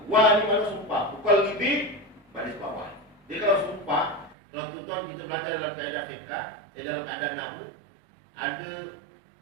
Wa ni mana sumpah, muqallibi baris bawah. Dia kalau sumpah, kalau tuan-tuan kita belajar dalam kaedah fiqh, dalam kaedah nahwu, ada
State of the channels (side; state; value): left; drops out; at 4.4 s